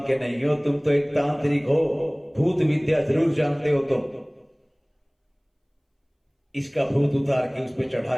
के नहीं हो, तुम तो एक तांत्रिक हो, भूत विद्या जरूर जानते हो तुम। इसका भूत उतार के उस पर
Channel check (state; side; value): identical; both; correlation 1.00